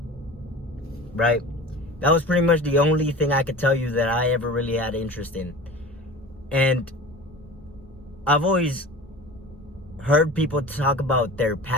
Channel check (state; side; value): normal; both; correlation 0.36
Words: right? That was pretty much the only thing I could tell you that I ever really had interest in. And I've always heard people talk about their